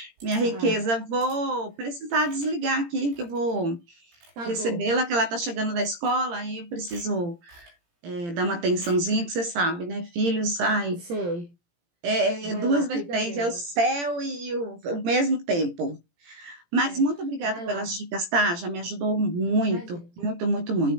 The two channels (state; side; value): late; left; 17 ms